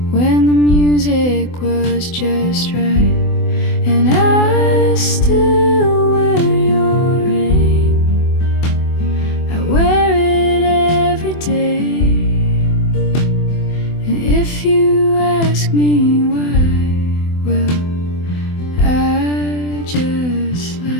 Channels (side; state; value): right; late; 24 ms